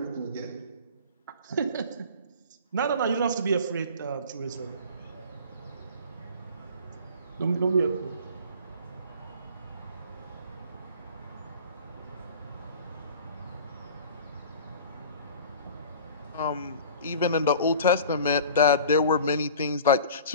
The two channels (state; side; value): inverted; both; correlation -0.43